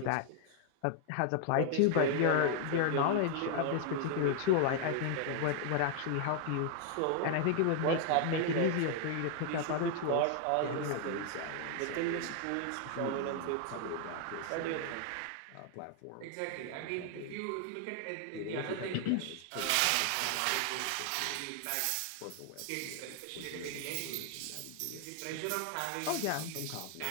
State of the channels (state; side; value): different; both; correlation 0.00